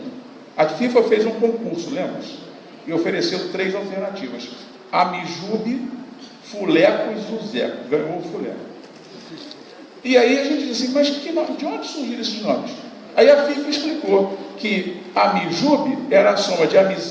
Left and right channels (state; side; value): identical; both; correlation 1.00